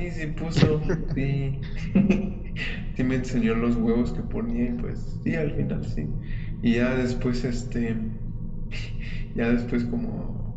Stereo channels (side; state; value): both; identical; correlation 1.00